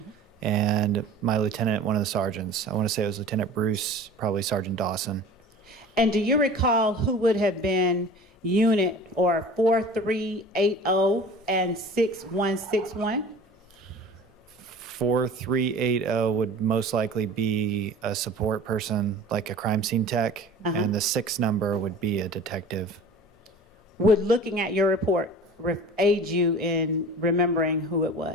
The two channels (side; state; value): both; normal; correlation 0.40